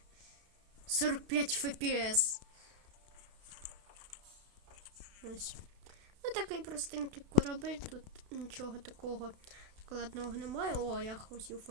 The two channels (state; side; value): late; left; 32 ms